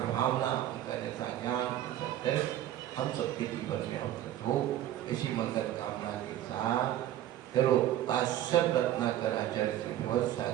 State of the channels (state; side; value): quieter; left; 12.5 dB